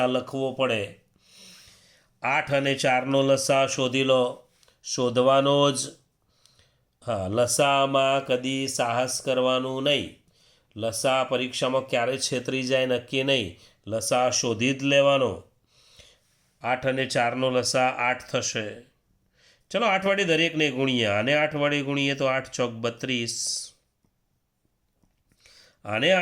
લખવો પડે. 8 અને 4નો લસા શોધી લો. શોધવાનો જ. હા, લસામાં કદી સાહસ કરવાનું નહીં. લસા પરીક્ષામાં ક્યારે છેતરી જાય નક્કી નહીં. લસા શોધી જ લેવાનો. 8 અને 4નો લસા 8 થશે. ચલો 8 વડે દરેકને ગુણીએ. આને 8 વડે ગુણીએ તો 8 ચોક 32. આને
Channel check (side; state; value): both; identical; correlation 1.00